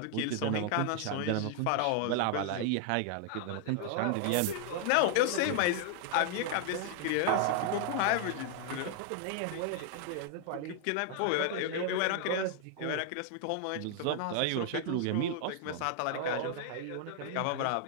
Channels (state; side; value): different; both; correlation 0.00